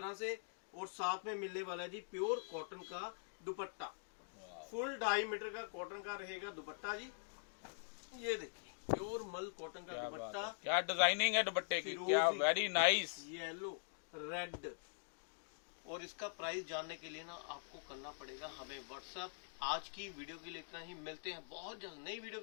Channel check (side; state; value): right; silent; digital silence